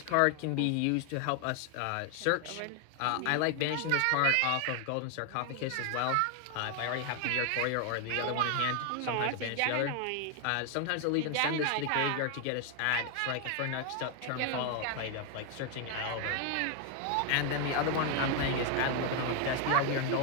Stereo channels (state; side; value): different; both; correlation 0.00